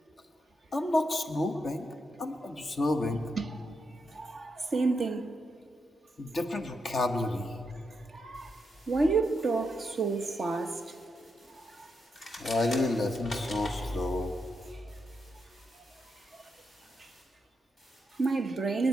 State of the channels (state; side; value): normal; both; correlation 0.83